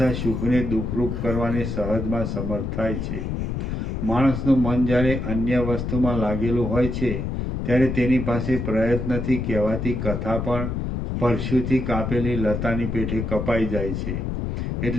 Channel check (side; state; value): left; noise; rumble, 3 dB below the sound